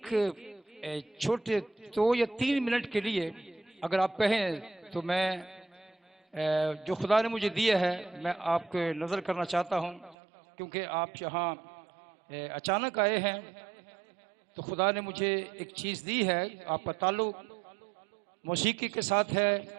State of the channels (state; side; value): drops out; left; at 10.2 s